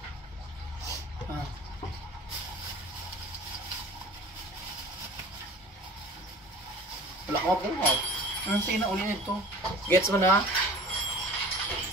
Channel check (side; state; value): both; normal; correlation 0.43